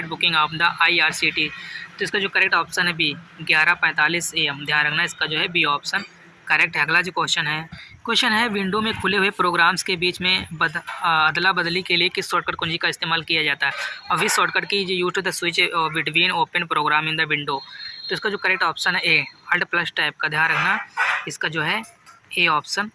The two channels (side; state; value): both; identical; correlation 1.00